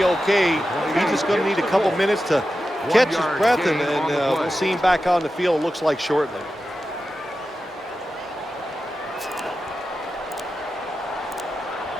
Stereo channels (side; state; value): both; normal; correlation 0.91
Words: okay. He's just going to need a couple minutes to catch his breath, and we'll see him back on the field, looks like shortly.